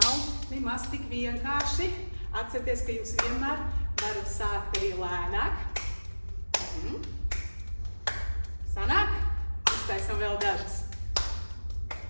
nemaz tik vienkārši. Atcerieties, ka jūs vienmēr varat sākt arī lēnāk. Sanāk? Uztaisam vēl dažas.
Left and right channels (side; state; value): both; inverted; correlation -1.00